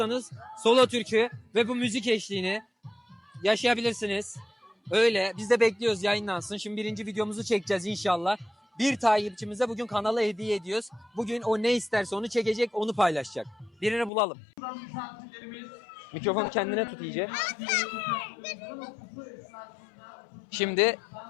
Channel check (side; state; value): right; drops out; at 14.1 s